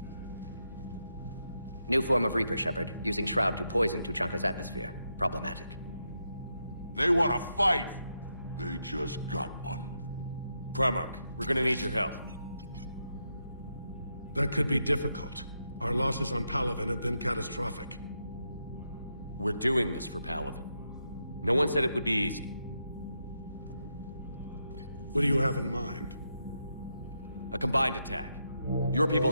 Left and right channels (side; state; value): both; inverted; correlation -0.83